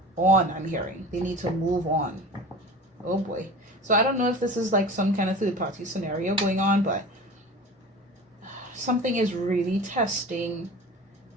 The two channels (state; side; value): normal; both; correlation 0.37